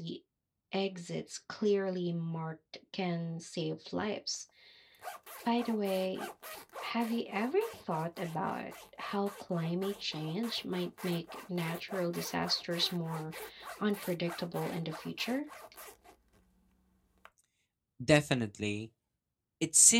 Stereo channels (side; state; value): both; identical; correlation 1.00